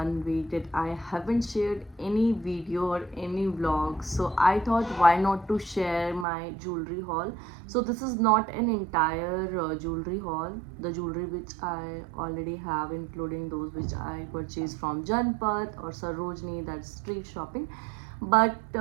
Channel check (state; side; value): drops out; left; at 6.2 s